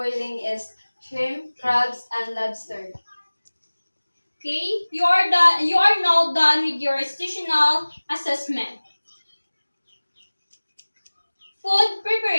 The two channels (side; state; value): both; inverted; correlation -1.00